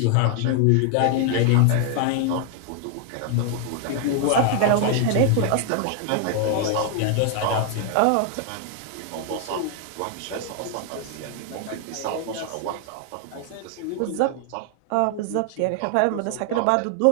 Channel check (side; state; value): both; different; correlation 0.00